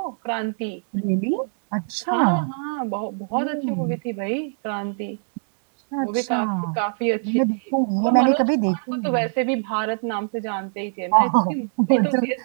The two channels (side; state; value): left; silent; 63 dB below the other